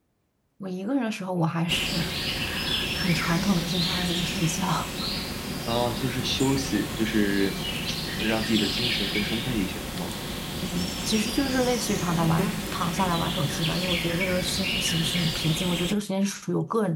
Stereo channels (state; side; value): identical; both; correlation 1.00